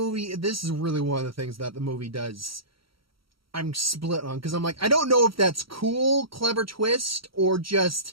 this is really one of the things that the movie does. I'm split on, because I'm like, I don't know if that's cool, clever twist, or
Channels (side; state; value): left; late; 0.75 ms